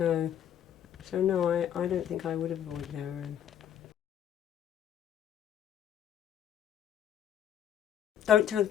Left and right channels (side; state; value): right; quieter; 10.0 dB